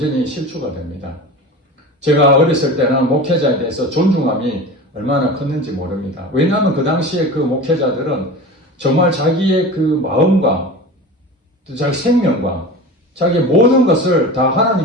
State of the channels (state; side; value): normal; both; correlation 0.32